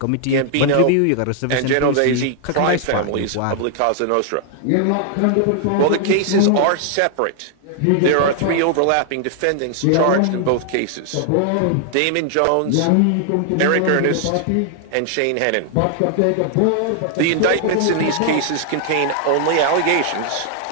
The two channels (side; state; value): both; different; correlation 0.00